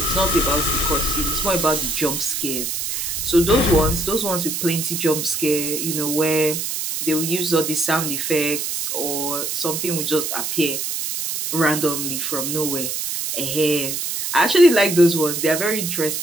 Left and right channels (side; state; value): right; noise; hiss, 3 dB below the sound